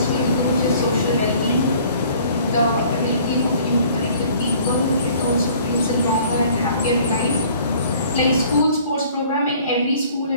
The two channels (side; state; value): both; inverted; correlation -0.54